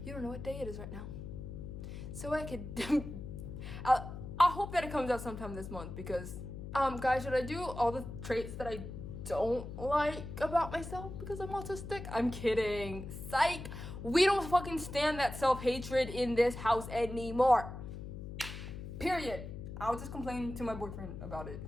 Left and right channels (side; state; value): left; noise; hum, 9 dB below the sound